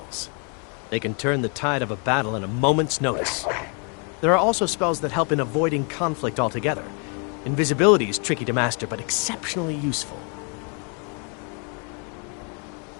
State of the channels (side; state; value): right; quieter; 37.8 dB